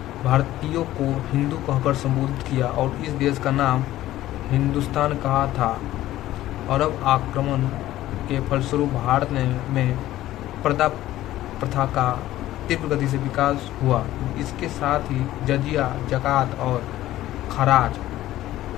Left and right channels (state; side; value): quieter; right; 14.7 dB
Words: भारतीयों को हिंदू कहकर संबोधित किया और इस देश का नाम हिंदुस्तान कहा था। अरब आक्रमण के फलस्वरूप भारत में पर्दा प्रथा का तीव्र गति से विकास हुआ। इसके साथ ही जजिया, ज़कात और खराज